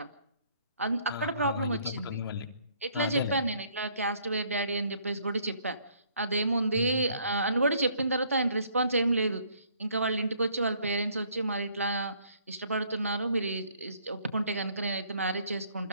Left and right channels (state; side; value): inverted; both; correlation -0.63